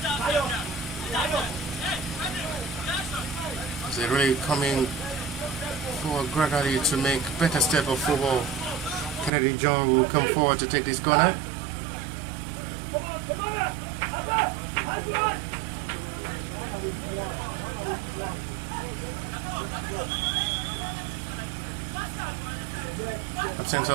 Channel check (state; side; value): drops out; left; at 9.3 s